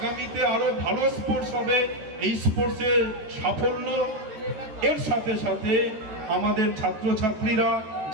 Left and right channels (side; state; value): left; late; 13 ms